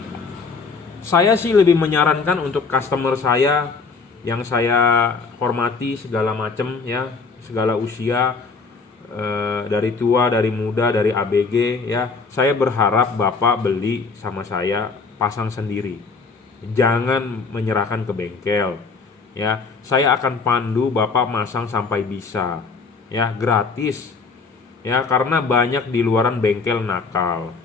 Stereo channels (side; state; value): right; quieter; 4.6 dB